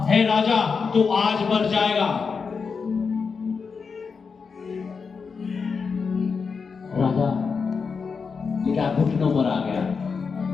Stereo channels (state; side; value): quieter; right; 5.4 dB